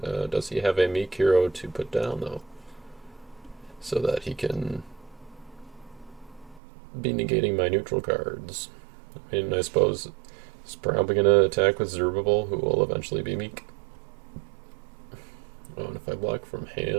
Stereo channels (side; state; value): left; drops out; at 6.6 s